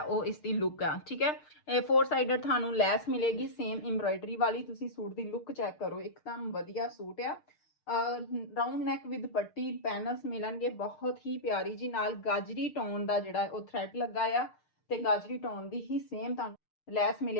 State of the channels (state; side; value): late; right; 6.6 ms